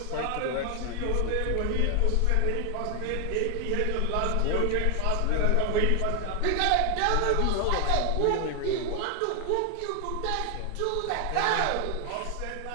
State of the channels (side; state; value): both; different; correlation 0.00